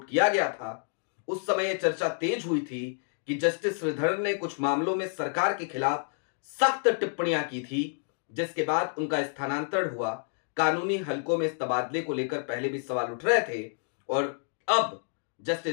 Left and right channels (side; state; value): right; silent; 59 dB below the other